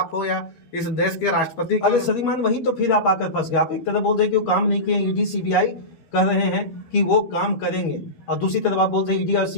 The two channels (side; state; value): right; late; 12 ms